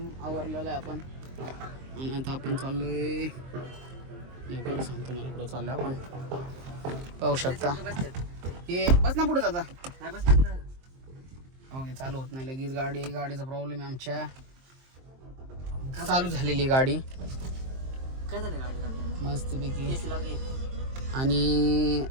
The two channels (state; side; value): late; left; 23 ms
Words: आवरलेला आहे आपण आणि आता आपण चाललोय लवकर सांगतो मला कुठं चाललोय आपण पाहू शकता हे बस ना पुढे जाता नाही बसतात ना ओके चालू होत नाही लगेच गाडीचा प्रॉब्लेम आहे आमच्या चालू झालेली गाडी काय झालं गाडी मस्तपैकी एसी लावली आणि